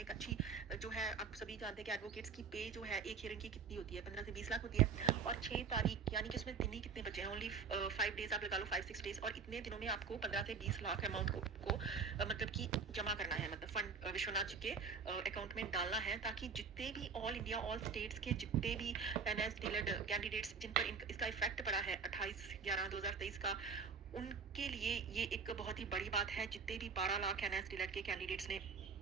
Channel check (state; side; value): quieter; left; 5.5 dB